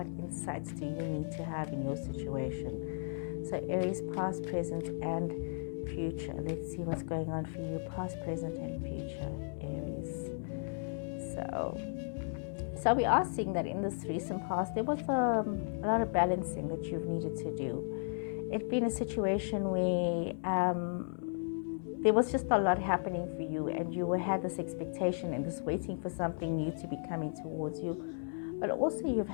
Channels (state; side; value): silent; right; digital silence